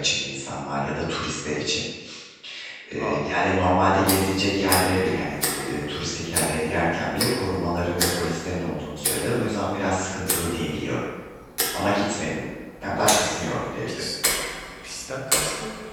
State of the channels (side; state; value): both; identical; correlation 1.00